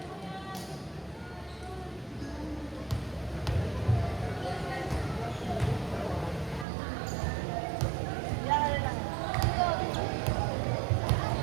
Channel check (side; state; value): left; drops out; at 6.7 s